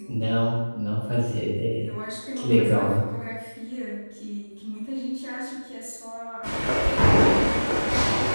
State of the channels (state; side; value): inverted; both; correlation -1.00